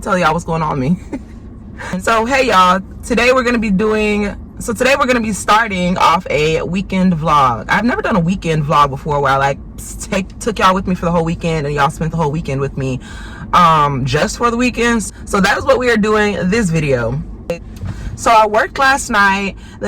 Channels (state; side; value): identical; both; correlation 1.00